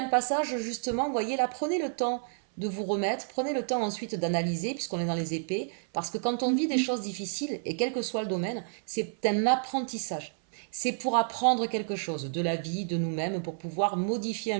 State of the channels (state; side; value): silent; left; 58 dB below the other